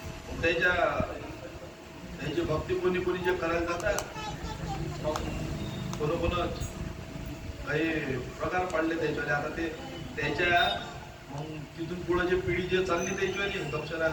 त्याची भक्ती कोणी कोणी जे करायला जातात, मग कोण काही प्रकार पडले त्याच्यावर. आता ते त्याच्या मग तिथून पुढे जे पिढी जे चालली त्याच्यावाली दक्षिणा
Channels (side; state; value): both; identical; correlation 1.00